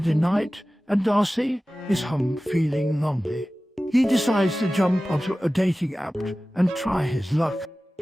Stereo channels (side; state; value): both; normal; correlation 0.96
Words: night, and Darcy is home feeling lonely. He decides to jump onto a dating app and try his luck.